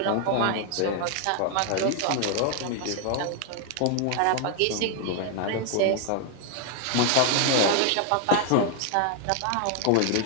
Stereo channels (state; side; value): different; both; correlation 0.00